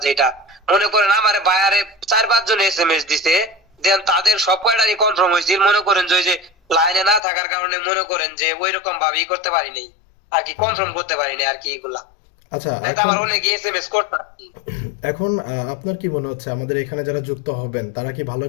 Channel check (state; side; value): drops out; right; at 7.2 s